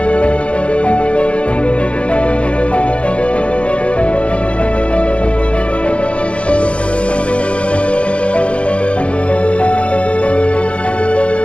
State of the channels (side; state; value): right; late; 0.061 ms